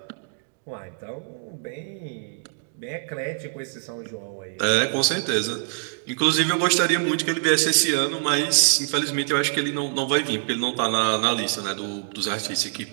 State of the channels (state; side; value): silent; left; 62 dB below the other